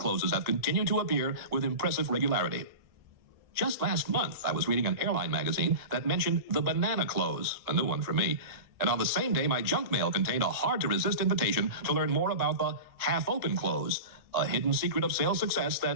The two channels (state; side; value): late; left; 1.7 ms